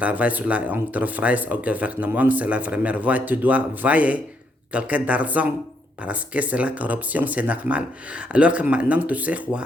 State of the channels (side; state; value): both; normal; correlation 0.75